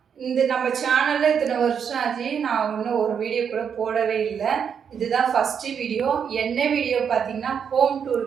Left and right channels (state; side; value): quieter; left; 7.3 dB